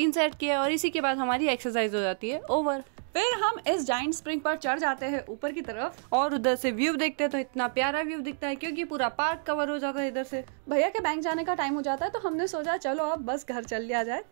सेट किए और इसी के बाद हमारी एक्सरसाइज हो जाती है ओवर। फिर हम इस जाइंट स्प्रिंग पर चढ़ जाते हैं ऊपर की तरफ और उधर से व्यू देखते हैं तो इतना प्यारा व्यू दिखता है क्योंकि पूरा पार्क कवर हो जाता है इधर से। भैया के बैंक जाने का टाइम हो जाता है तो हमने सोचा चलो अब बस घर चल लिया जाए,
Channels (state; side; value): silent; left; digital silence